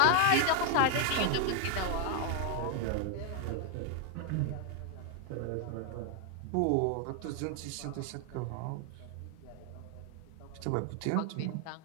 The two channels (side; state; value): both; different; correlation 0.00